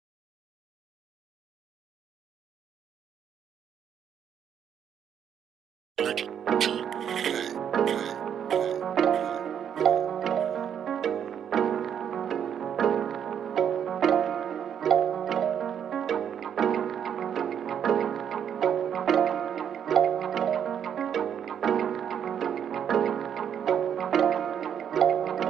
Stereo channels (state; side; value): quieter; left; 8.6 dB